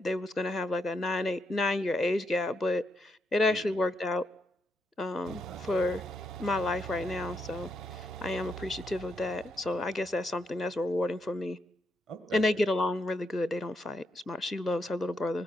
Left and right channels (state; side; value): normal; both; correlation 0.80